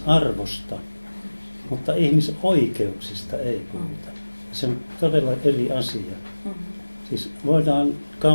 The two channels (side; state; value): both; inverted; correlation -1.00